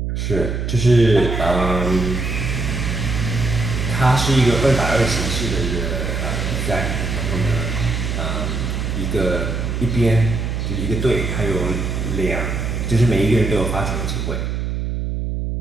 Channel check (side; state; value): right; noise; hum, 2 dB below the sound